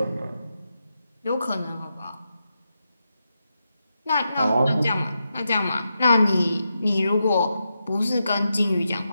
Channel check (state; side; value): inverted; both; correlation -0.86